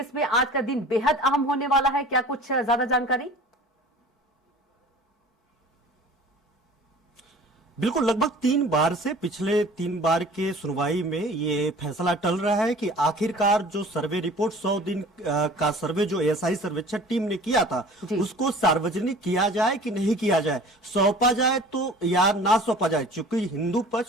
में आज का दिन बेहद अहम होने वाला है, क्या कुछ ज्यादा जानकारी? बिल्कुल, लगभग 3 बार से पिछले 3 बार के सुनवाई में ये फैसला टल रहा है कि आखिरकार जो सर्वे रिपोर्ट 100 दिन का सर्वे जो एएसआई सर्वेक्षण टीम ने किया था उसको सार्वजनिक किया जाए कि नहीं किया जाए, सौंपा जाए तो या ना सौंपा जाए। चूंकि हिंदू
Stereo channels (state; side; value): normal; both; correlation 0.45